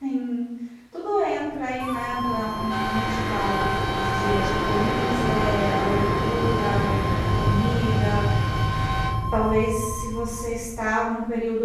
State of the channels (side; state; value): both; identical; correlation 1.00